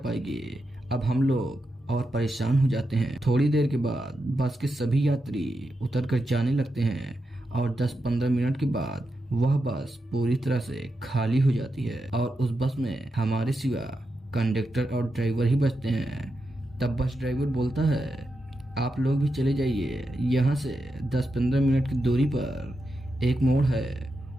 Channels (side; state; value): both; normal; correlation 0.87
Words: अब हम लोग और परेशान हो जाते हैं। थोड़ी देर के बाद बस के सभी यात्री उतर कर जाने लगते हैं और 10-15 मिनट के बाद वह बस पूरी तरह से खाली हो जाती है और उस बस में हमारे सिवा कंडक्टर और ड्राइवर ही बचते हैं। तब बस ड्राइवर बोलता है, आप लोग भी चले जाइए, यहाँ से 10-15 मिनट की दूरी पर एक मोड़ है,